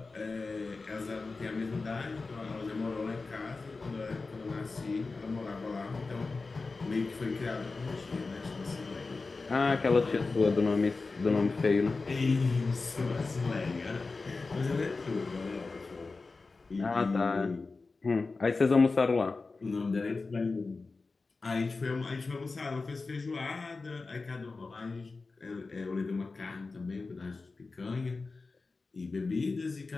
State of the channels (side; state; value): right; quieter; 3.9 dB